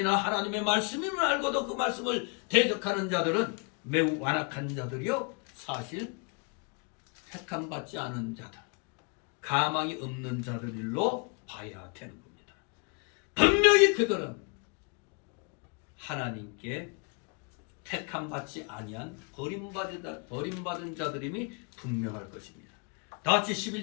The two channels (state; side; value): quieter; right; 35.5 dB